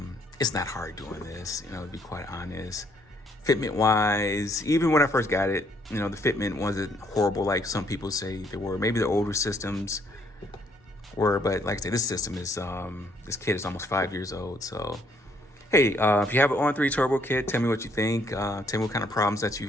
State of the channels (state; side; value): normal; both; correlation 0.68